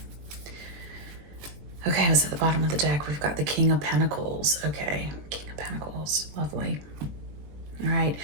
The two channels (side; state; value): left; late; 21 ms